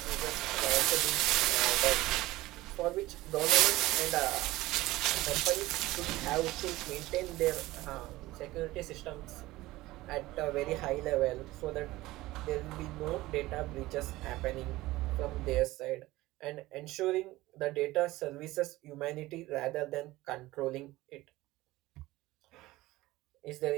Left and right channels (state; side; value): quieter; left; 18.3 dB